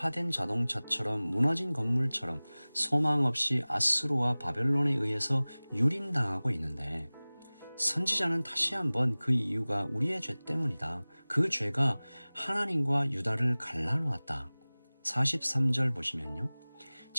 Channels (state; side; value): inverted; both; correlation -1.00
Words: 자동차처럼 무너진 건물처럼 소망 없이 아수르와 바벨론에 의해서 유린당하고 있는데 선지자는 다시 한번 그 이유가 우리의 죄 때문이다. 그 죄가 하나님과 유다를 갈라놓았다. 43절 보시면요.